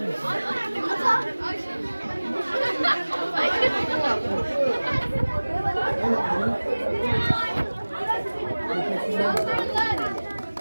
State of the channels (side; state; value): both; inverted; correlation -1.00